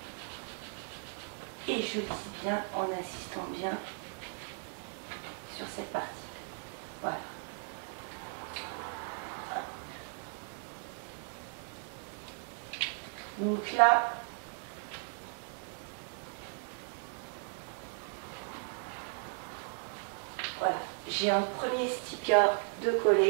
et je lisse bien en insistant bien sur cette partie. Voilà. Donc là, voilà, j'ai un premier sticker de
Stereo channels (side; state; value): left; silent; 54 dB below the other